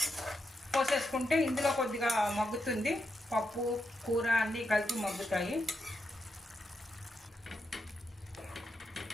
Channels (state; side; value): normal; both; correlation 0.84